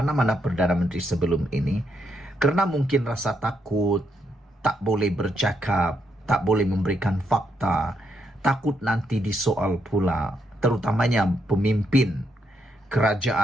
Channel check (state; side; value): normal; both; correlation 0.78